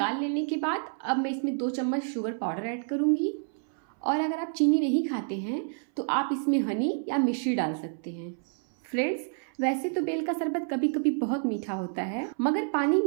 लेने के बाद अब मैं इसमें 2 चम्मच शुगर पाउडर ऐड करूँगी, और अगर आप चीनी नहीं खाते हैं तो आप इसमें हनी या मिश्री डाल सकते हैं। फ्रेंड्स, वैसे तो बेल का शरबत कभी कभी बहुत मीठा होता है, मगर पानी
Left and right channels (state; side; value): silent; left; 59 dB below the other